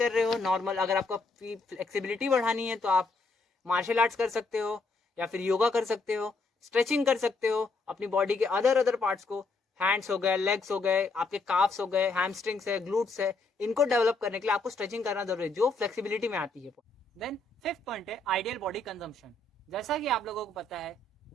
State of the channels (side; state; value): right; quieter; 3.3 dB